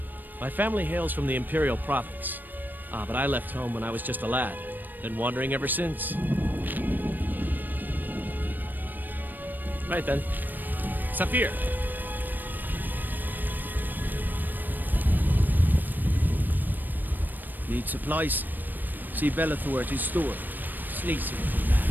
My family hails from the Imperial Province. But I left home when I was just a lad. Been wandering ever since. Right then. Saphir! Need supplies? See Bellathor at his store. Sleazy little man.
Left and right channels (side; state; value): left; late; 0.090 ms